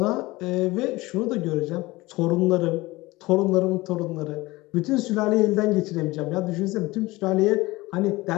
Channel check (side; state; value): right; quieter; 20.5 dB